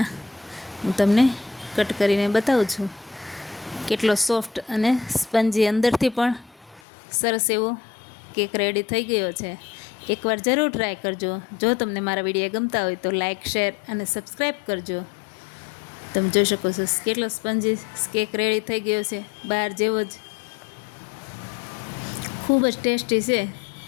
હું તમને કટ કરીને બતાવું છું. કેટલો સોફ્ટ અને સ્પંજી અંદરથી પણ સરસ એવો કેક રેડી થઈ ગયો છે. એકવાર જરૂર ટ્રાય કરજો. જો તમને મારા વિડીયો ગમતા હોય તો લાઇક, શેર અને સબસ્ક્રાઈબ કરજો. તમે જોઈ શકો છો કેટલો સ્પંજી કેક રેડી થઈ ગયો છે. બહાર જેવો જ ખૂબ જ ટેસ્ટી છે.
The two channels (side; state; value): right; drops out; at 6.8 s